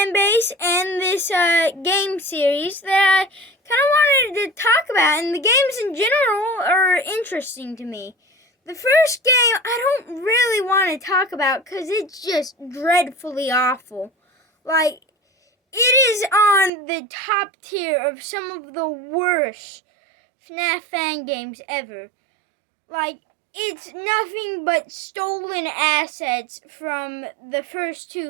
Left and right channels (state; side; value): drops out; left; at 16.7 s